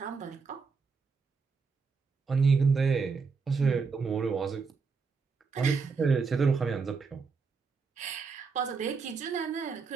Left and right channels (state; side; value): quieter; left; 5.0 dB